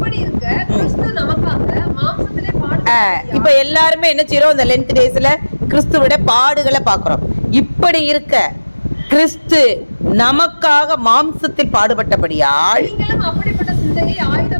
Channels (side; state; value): both; inverted; correlation -1.00